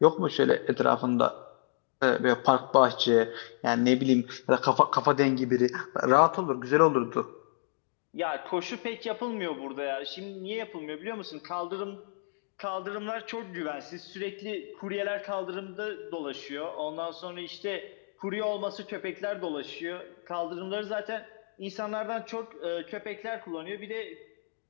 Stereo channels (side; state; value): right; silent; digital silence